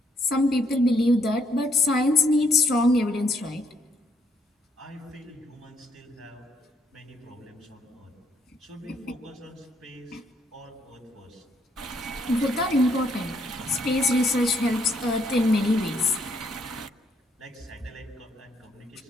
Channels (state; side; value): normal; both; correlation 0.70